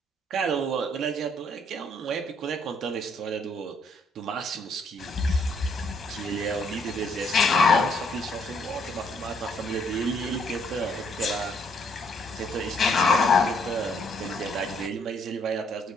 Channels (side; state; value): both; normal; correlation 0.68